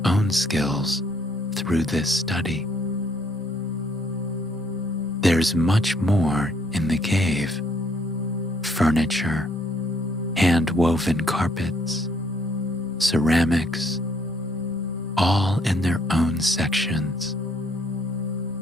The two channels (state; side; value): normal; both; correlation 0.67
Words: own skills through this study. There's much more in the cave: furniture, hand-woven carpets, ceramics, all in their own sections.